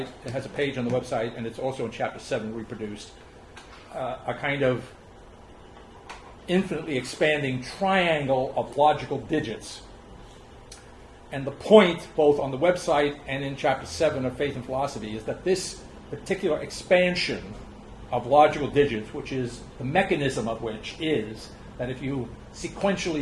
It has a page on the website, and it's also in Chapter 7 reproduced. A kind of infinitely expanding triangle of logical digits. And the point, both on the website and in Chapter 7 of Faith and Philosophy, is that this particular expansion of logical digits, which is the mechanism of which is that if you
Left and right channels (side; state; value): both; identical; correlation 1.00